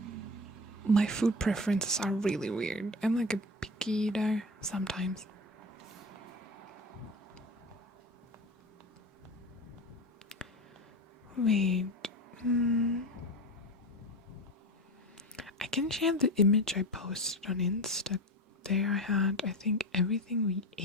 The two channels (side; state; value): both; normal; correlation 0.28